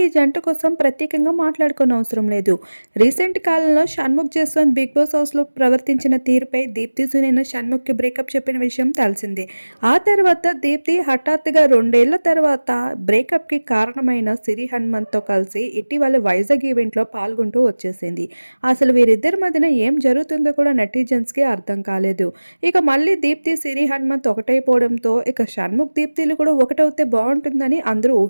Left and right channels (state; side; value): inverted; both; correlation -1.00